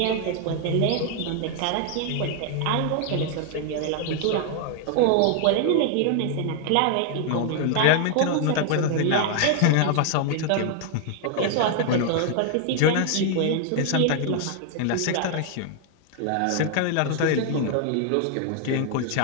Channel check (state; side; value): different; both; correlation 0.00